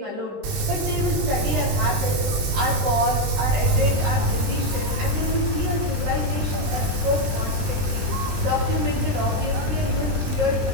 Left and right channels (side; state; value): left; late; 20 ms